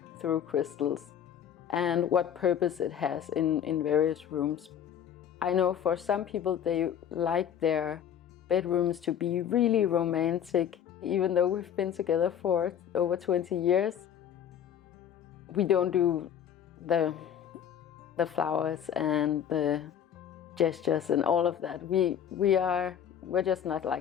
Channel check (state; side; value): quieter; right; 9.1 dB